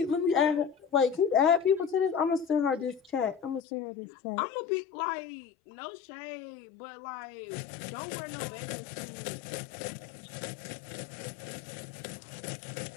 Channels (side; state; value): right; drops out; at 3.6 s